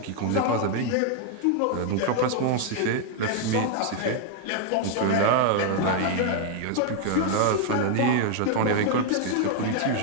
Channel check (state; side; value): different; both; correlation 0.00